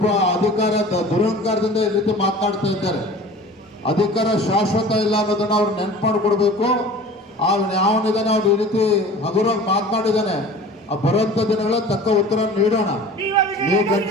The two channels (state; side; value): normal; both; correlation 0.41